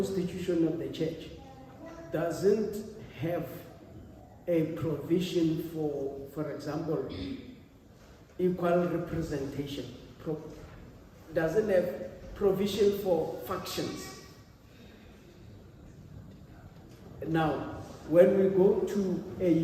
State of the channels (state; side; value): identical; both; correlation 1.00